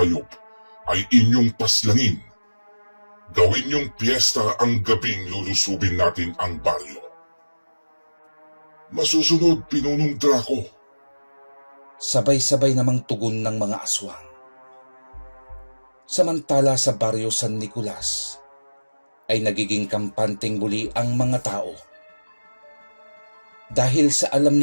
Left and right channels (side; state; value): both; inverted; correlation -1.00